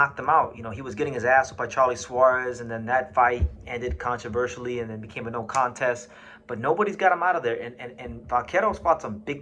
him out. You know, he was getting his ass whipped by Charlie Suarez, and then that fight ended controversially and then became a no contest. But nobody's got him out of there. And Vaquero's fought some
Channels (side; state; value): both; identical; correlation 1.00